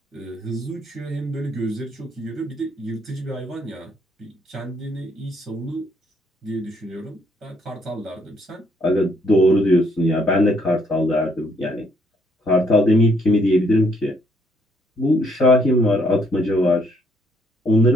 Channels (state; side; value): normal; both; correlation 0.69